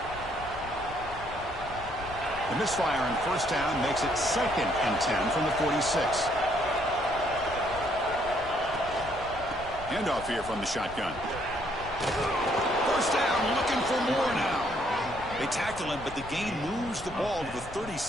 The misfire on 1st down makes it 2nd and 10 from the 46. Handoff here from the shotgun. 1st down, looking for more now. They tackle him, but the gain moves the ball to the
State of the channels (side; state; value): left; noise; rumble, 14 dB below the sound